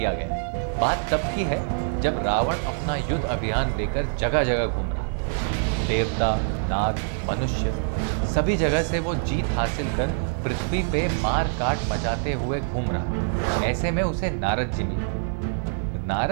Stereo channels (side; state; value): left; silent; 62 dB below the other